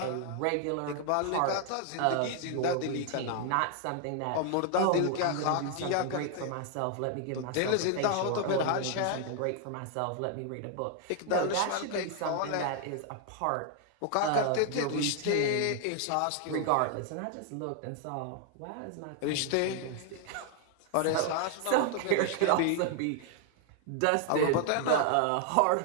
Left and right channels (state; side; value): different; both; correlation 0.00